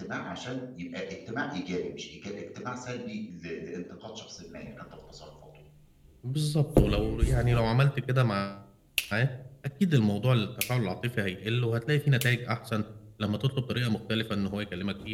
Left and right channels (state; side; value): identical; both; correlation 1.00